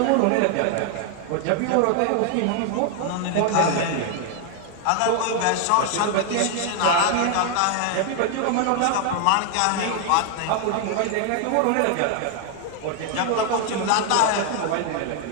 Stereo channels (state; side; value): different; both; correlation 0.00